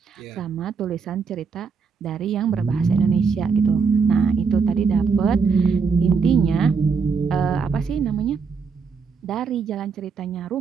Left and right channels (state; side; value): quieter; left; 5.4 dB